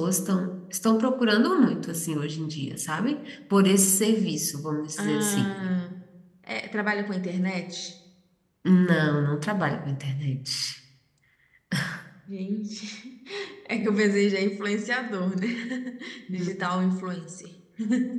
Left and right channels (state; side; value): identical; both; correlation 1.00